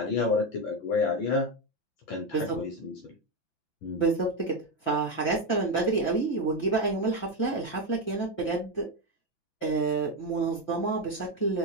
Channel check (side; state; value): right; late; 5.9 ms